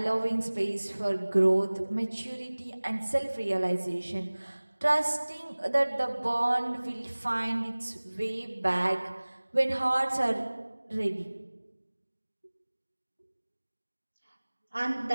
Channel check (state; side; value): inverted; both; correlation -1.00